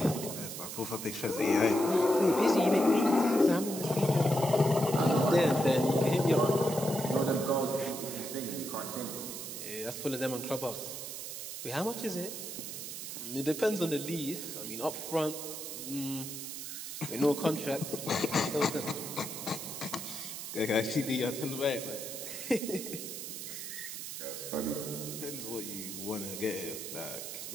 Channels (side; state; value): right; noise; hiss, 7 dB below the sound